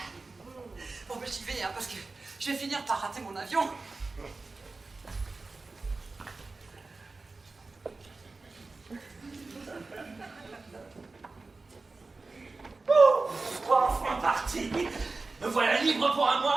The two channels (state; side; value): quieter; left; 3.7 dB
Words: Bon, ben j'y vais, hein, parce que je vais finir par rater mon avion. Enfin parti. Me voilà libre pour un